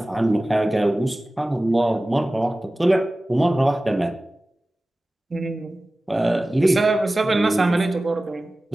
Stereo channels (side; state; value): both; normal; correlation 0.97